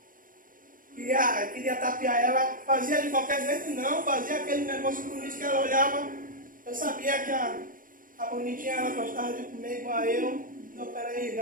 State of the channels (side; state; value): left; late; 0.40 ms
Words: queria tapear ela, fazia de qualquer jeito, não, fazia aquele negócio bonito que ela olhava. Eu sabia que a bonitinha ela gostava de comer igual a eu. Não, peraí,